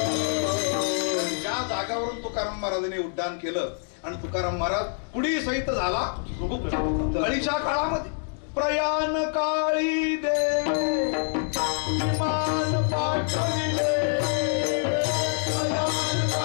ज्या जागावरून तुकाराम महाराजांनी उड्डाण केलं आणि तुकाराम महाराज पुढे सहित झाला कळीच्या काळामध्ये. प्रयाण काळी देवे विमान पाठविले, प्रयाण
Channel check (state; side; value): silent; right; 59 dB below the other